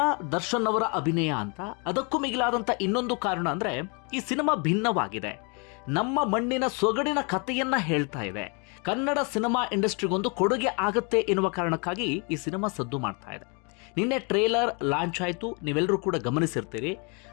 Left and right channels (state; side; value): quieter; right; 33.8 dB